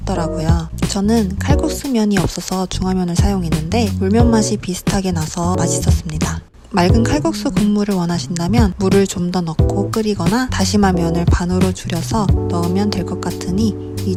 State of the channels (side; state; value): both; identical; correlation 1.00